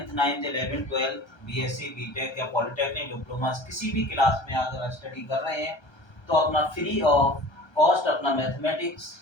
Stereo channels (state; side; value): late; right; 1.3 ms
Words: 9th 11th 12th BSc BTech या पॉलिटेक्निक डिप्लोमा किसी भी क्लास में अगर स्टडी कर रहे हैं तो अपना फ्री ऑफ कॉस्ट अपना मैथमेटिक्स